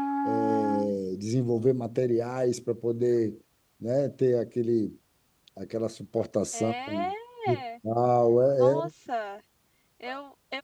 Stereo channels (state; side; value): identical; both; correlation 1.00